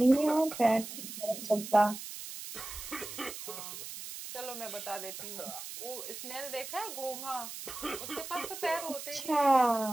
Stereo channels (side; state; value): right; noise; hiss, 9 dB below the sound